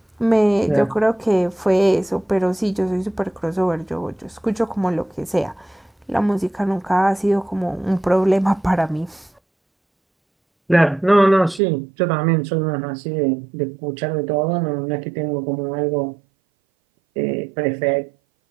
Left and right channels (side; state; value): left; drops out; at 11.6 s